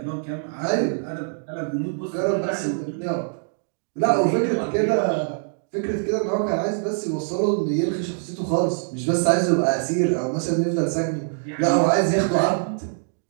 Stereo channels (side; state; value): left; silent; digital silence